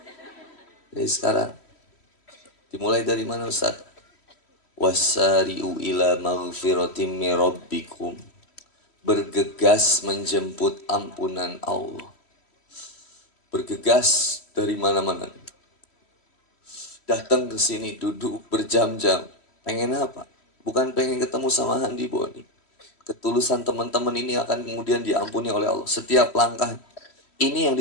Jadi sekarang. Dimulai dari mana Ustaz? Wasari'u ila maghfiratim min rabbikum. Bergegas menjemput ampunan Allah. Bergegas dari mana-mana. Datang ke sini, duduk berjam-jam. Pengen apa? Bukan pengen ketemu sama Handi Boni. Ketulusan teman-teman ini akan kemudian diampuni oleh Allah. Setiap langkah. Ini yang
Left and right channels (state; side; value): late; right; 3.1 ms